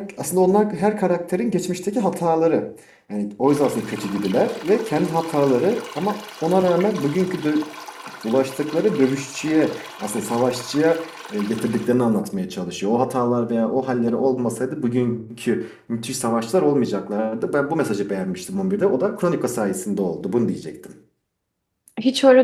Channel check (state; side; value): identical; both; correlation 1.00